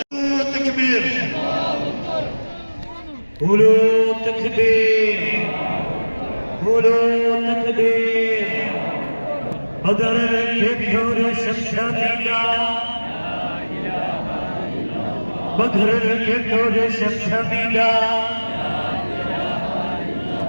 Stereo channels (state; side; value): inverted; both; correlation -1.00